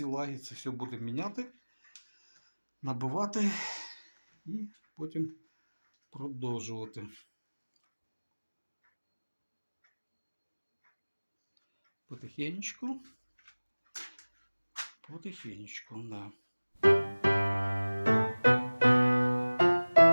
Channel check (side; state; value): both; inverted; correlation -1.00